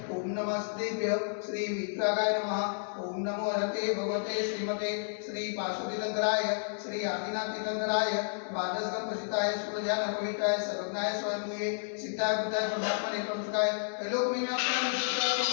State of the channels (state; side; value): silent; right; digital silence